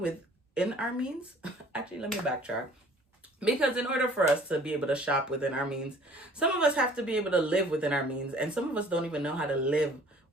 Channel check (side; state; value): both; normal; correlation 0.53